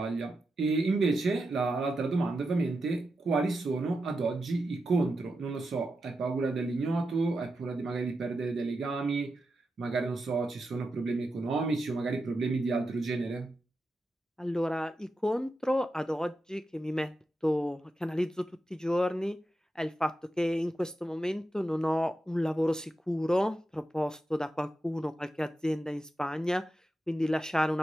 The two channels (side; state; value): both; normal; correlation 0.89